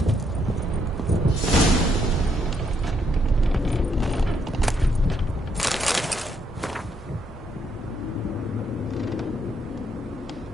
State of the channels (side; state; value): both; normal; correlation 0.74